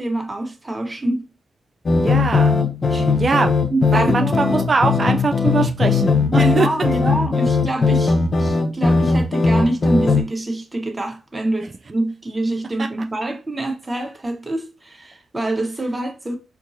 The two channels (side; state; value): both; normal; correlation 0.80